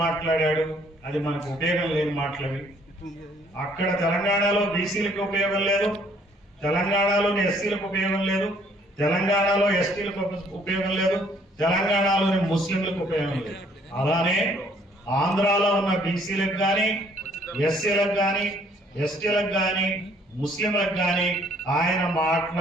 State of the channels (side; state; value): both; normal; correlation 0.62